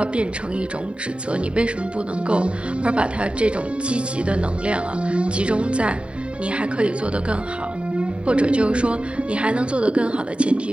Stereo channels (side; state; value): left; late; 0.057 ms